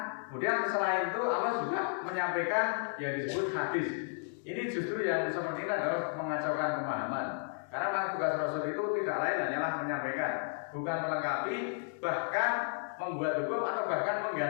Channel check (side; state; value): right; silent; 56 dB below the other